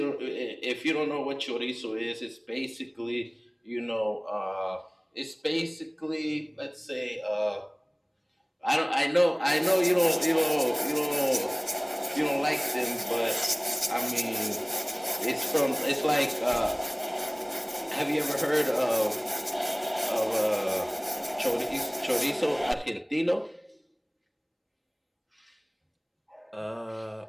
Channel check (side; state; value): both; identical; correlation 1.00